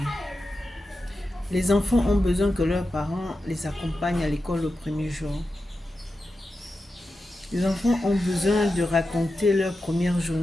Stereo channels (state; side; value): normal; both; correlation 0.91